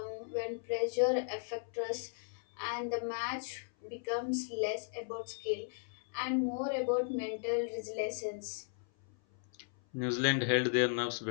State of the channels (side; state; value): right; silent; 54 dB below the other